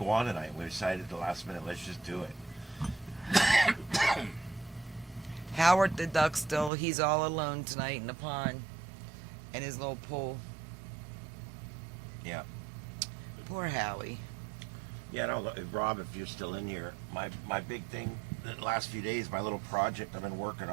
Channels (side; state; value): left; drops out; at 6.7 s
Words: on tonight. We decided at the last minute, let's just do it. Howard the duck still, he's all alone tonight in the pond. In his little pool. Yeah. Poor Howie. Yeah, no, Rob, if you're still in here, my big thing the last few days, my little project I've been working